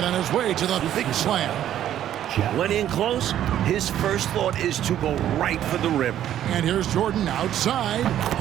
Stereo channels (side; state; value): left; quieter; 11.3 dB